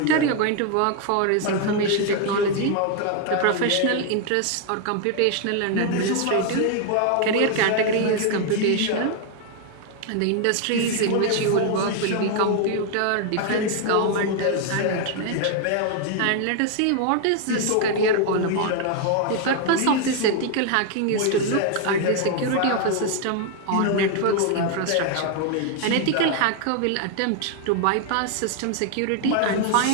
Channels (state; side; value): different; both; correlation 0.00